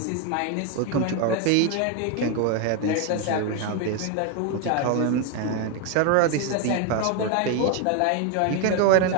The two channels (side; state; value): both; different; correlation 0.01